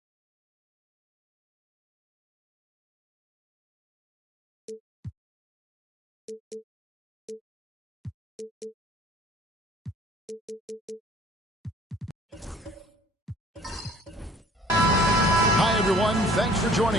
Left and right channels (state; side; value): normal; both; correlation 0.53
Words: everyone. Thanks for